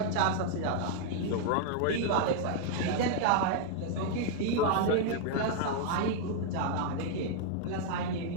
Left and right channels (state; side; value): different; both; correlation 0.00